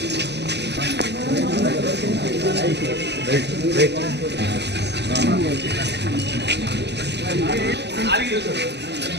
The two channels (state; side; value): late; left; 0.50 ms